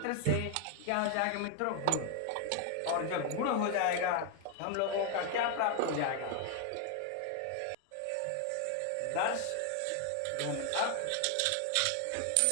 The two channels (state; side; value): different; both; correlation 0.00